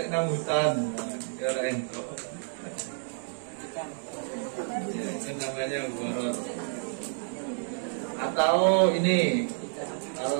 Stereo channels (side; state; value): left; silent; 58 dB below the other